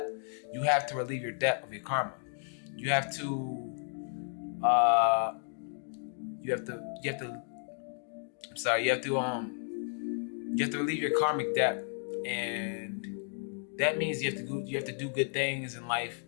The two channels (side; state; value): right; silent; 56 dB below the other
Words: you have to relieve your debt of your karma. You have to relieve your karmic debt, and that means you have to do good things in life.